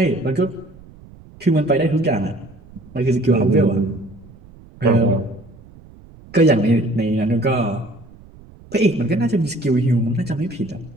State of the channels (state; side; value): noise; right; rumble, 22 dB below the sound